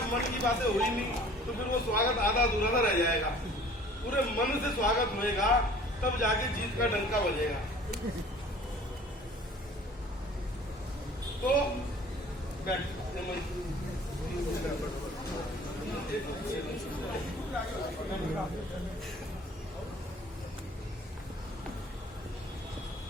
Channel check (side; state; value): both; normal; correlation 0.50